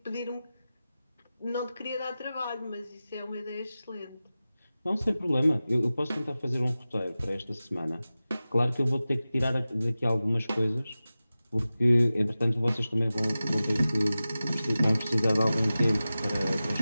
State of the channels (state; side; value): inverted; both; correlation -0.96